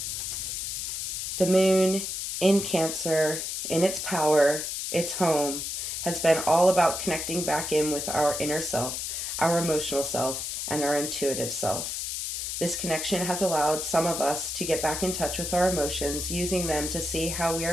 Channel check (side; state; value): left; noise; hiss, 3 dB below the sound